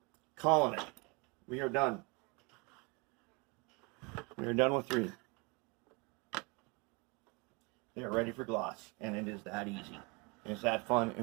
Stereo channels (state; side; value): quieter; left; 29.5 dB